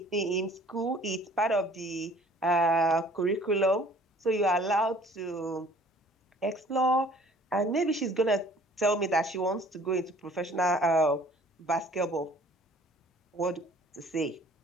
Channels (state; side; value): normal; both; correlation 0.53